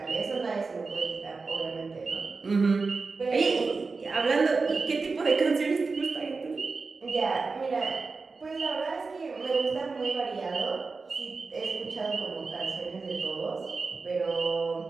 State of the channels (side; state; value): left; quieter; 4.2 dB